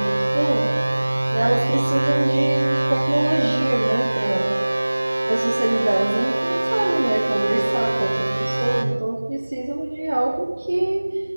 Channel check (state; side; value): inverted; both; correlation -1.00